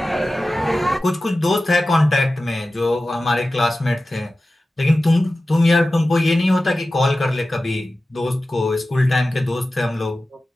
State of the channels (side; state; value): both; normal; correlation 0.95